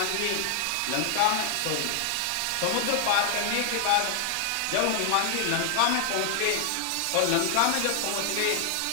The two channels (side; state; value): both; different; correlation 0.00